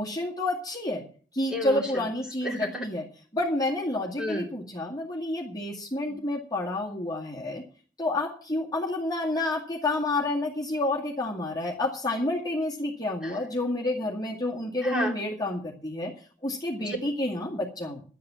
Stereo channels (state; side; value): normal; both; correlation 0.55